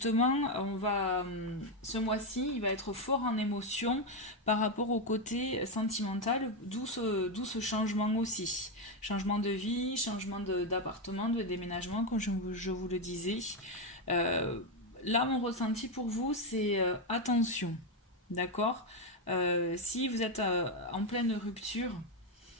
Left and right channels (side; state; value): both; normal; correlation 0.06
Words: ce mois-ci, il va être fort en émotion par rapport au côté sentimental, d'où ce changement aussi. Changement de vie, changement d'appartement, de déménagement, comme je vous le disais. Là, mon ressenti pour vous, c'est attention, d'accord? Si vous êtes en pleine rupture,